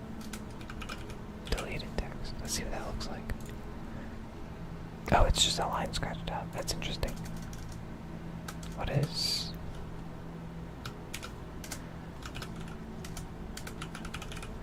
deleted text. Let's see what that looks like. Oh, it's just a line scratched out. That's interesting. What is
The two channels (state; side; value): identical; both; correlation 1.00